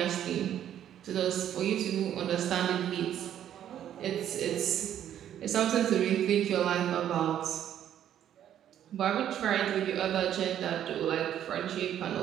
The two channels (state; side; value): quieter; left; 10.6 dB